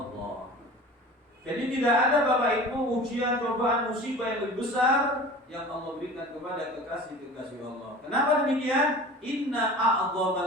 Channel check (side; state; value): both; normal; correlation 0.39